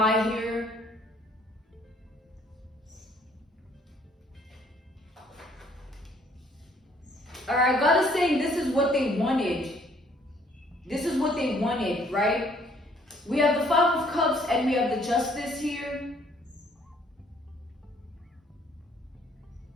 here. All right, God is saying this is what they wanted. This is what they wanted, right? We have the Five of and we have the Justice here.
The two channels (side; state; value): both; normal; correlation 0.61